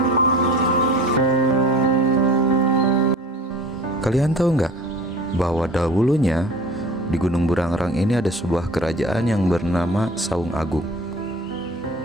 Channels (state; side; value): normal; both; correlation 0.42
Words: Kalian tahu nggak bahwa dahulunya di Gunung Burangrang ini ada sebuah kerajaan yang bernama Saung Agung.